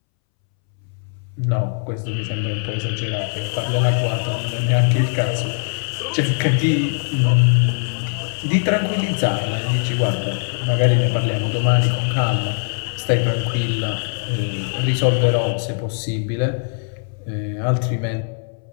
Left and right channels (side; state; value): right; silent; 65 dB below the other